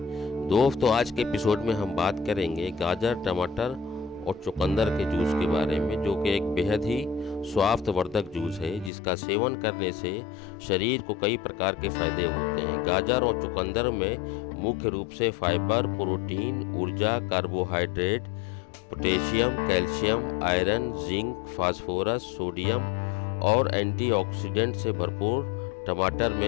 दोस्तों, आज के एपिसोड में हम बात करेंगे गाजर, टमाटर और चुकंदर के जूस के बारे में, जो कि एक बेहद ही स्वास्थ्यवर्धक जूस है जिसका सेवन करने से शरीर को कई प्रकार के फायदे होते हैं। गाजर और चुकंदर में मुख्य रूप से फाइबर, प्रोटीन, ऊर्जा, carbohydrate, potassium, calcium, iron, zinc, phosphorus, sodium और एंटीऑक्सीडेंट से भरपूर टमाटर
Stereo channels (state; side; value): drops out; right; at 8.9 s